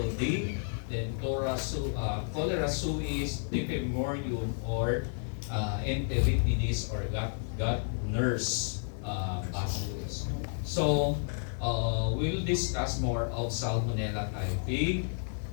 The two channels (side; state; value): right; silent; digital silence